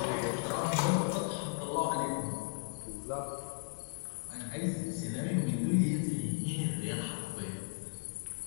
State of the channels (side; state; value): right; silent; digital silence